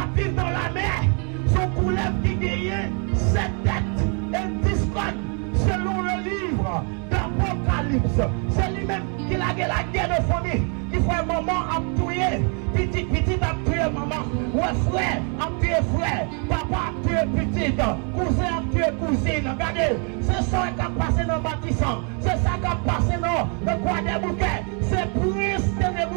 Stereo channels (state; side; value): quieter; left; 38.6 dB